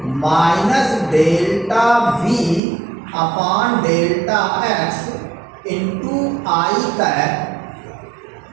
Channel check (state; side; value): drops out; left; at 2.6 s